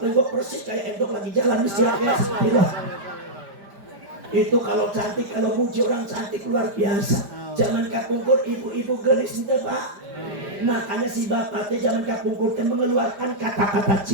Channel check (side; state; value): left; late; 5.0 ms